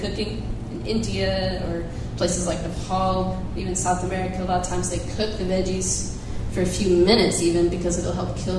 In India or places like Nepal, even South America, a lot of times they cook the veggies for a few minutes even because it'll help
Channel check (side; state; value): both; identical; correlation 1.00